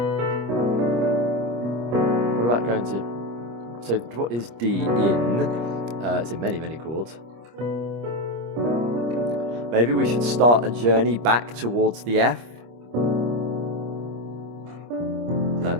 What about going to... So what is D in? It's in many, many chords. Maybe we should start a journey back towards the F. No,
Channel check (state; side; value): late; left; 25 ms